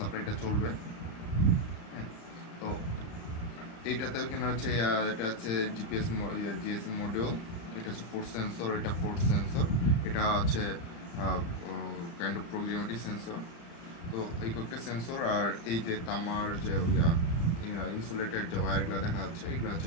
চলবে। তো এইটাতে এখানে হচ্ছে এটা হচ্ছে জিএসএম মডিউল, এটা হচ্ছে ফোর্স সেন্সর, এটা ফোর্স সেন্সর, এটা হচ্ছে কাইন্ড অফ প্রক্সিমিটি সেন্সর। তো এই কয়েকটা সেন্সর আর এই যে তামার যে ইনসুলেটেড যে ওয়্যারগুলো দেখা যাচ্ছে, এগুলো হচ্ছে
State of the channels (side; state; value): right; late; 35 ms